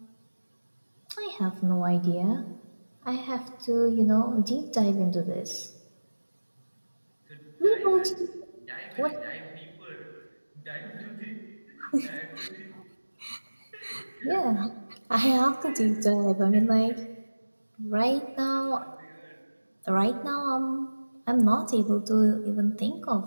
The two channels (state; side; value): inverted; both; correlation -1.00